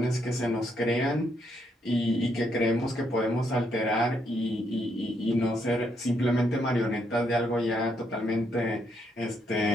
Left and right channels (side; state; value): both; normal; correlation 0.75